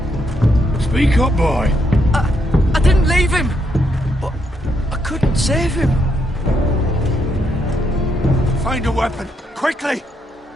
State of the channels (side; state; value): both; normal; correlation 0.77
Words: Speak up, boy. I didn't leave him. But I couldn't save him. Find a weapon, quickly!